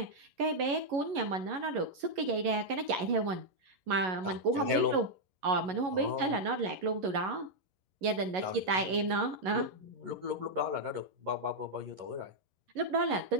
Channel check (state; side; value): late; left; 11 ms